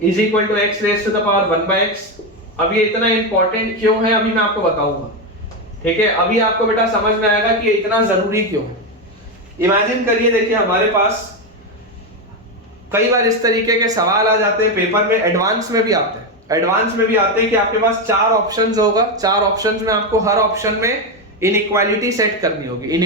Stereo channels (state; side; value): normal; both; correlation 0.10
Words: is equal to x raise to the power 1/x। अब ये इतना इंपॉर्टेंट क्यों है अभी मैं आपको बताऊंगा, ठीक है। अभी आपको बेटा समझ में आएगा कि ये इतना जरूरी क्यों है। इमेजिन करिए, देखिए हमारे पास कई बार इस तरीके के सवाल आ जाते हैं पेपर में, एडवांस में भी आते हैं। एडवांस में भी आते हैं कि आपके पास 4 ऑप्शंस होगा, 4 ऑप्शंस में आपको हर ऑप्शन में इनइक्वालिटी सेट करनी होगी।